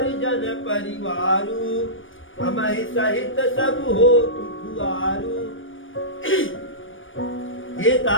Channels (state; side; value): late; right; 0.57 ms